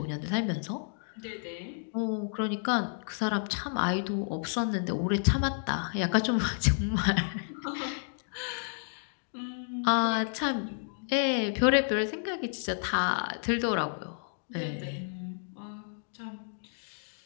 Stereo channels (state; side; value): silent; right; digital silence